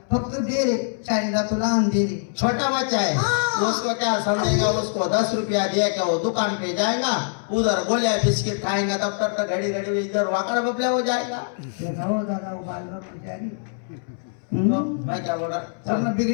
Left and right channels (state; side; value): silent; right; 63 dB below the other